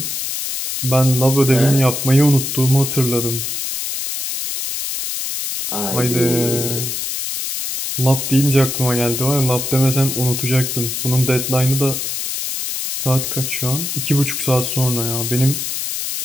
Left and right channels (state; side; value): noise; left; hiss, 4 dB below the sound